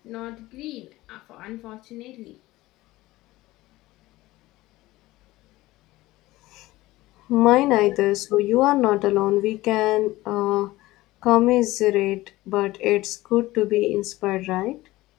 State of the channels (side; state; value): right; quieter; 18.2 dB